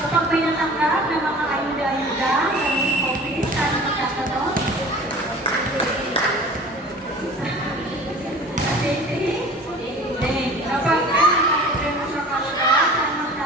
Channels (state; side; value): normal; both; correlation 0.42